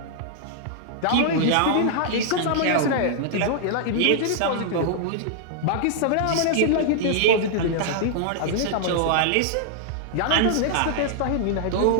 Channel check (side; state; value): both; different; correlation -0.01